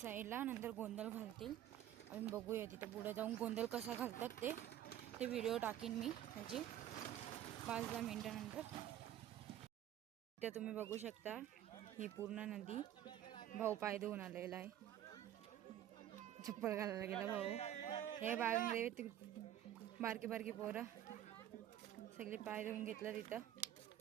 नंतर गोंधळ घालतील. आम्ही बघूया तिथं पुढे जाऊन गोंधळ कसा घालतात ते व्हिडिओ टाकीन मी त्याची 5-10 मिनिटानंतर. इथे तुम्ही बघू शकता ही पूर्ण नदी. भाऊ पाय धुवून आलेला आहे. चप्पल घालायला गेला भाऊ. हे बागेमध्ये बारकी बारकी पोरं सगळे पाय धुवून घेतलं तिथं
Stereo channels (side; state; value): left; quieter; 11.6 dB